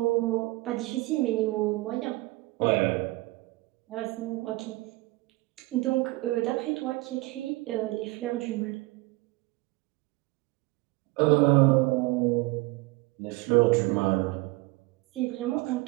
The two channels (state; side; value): quieter; left; 22.0 dB